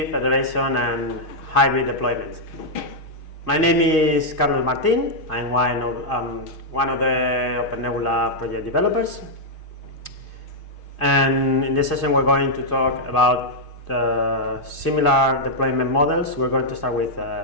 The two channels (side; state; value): right; late; 6.4 ms